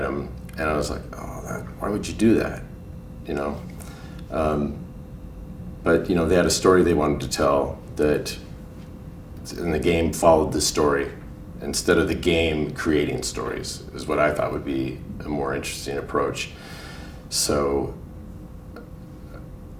And I was like, oh, why would you do that? You know? But you know, they had a story they wanted to tell that, and the game followed the story instead of the game creating stories, is what I thought would be a more interesting approach. So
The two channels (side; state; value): both; identical; correlation 1.00